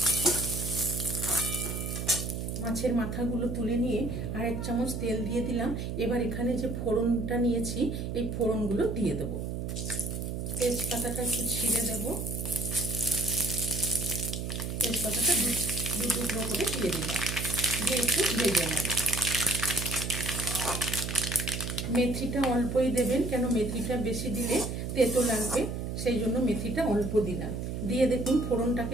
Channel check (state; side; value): noise; right; hum, 4 dB below the sound